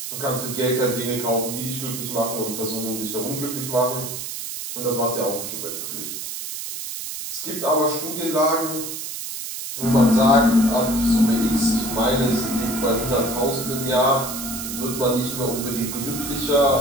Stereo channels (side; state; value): right; noise; hiss, 7 dB below the sound